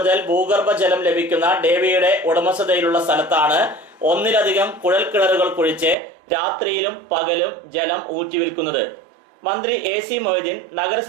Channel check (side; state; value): left; drops out; at 6.0 s